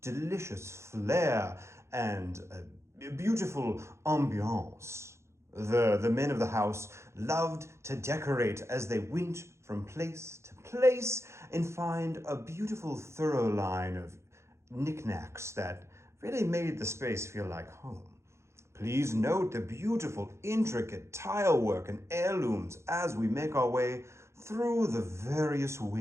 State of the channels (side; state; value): left; late; 0.13 ms